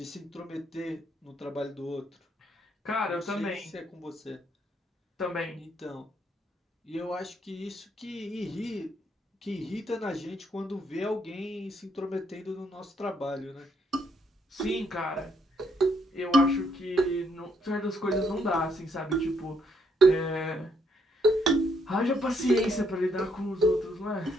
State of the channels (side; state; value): both; normal; correlation 0.73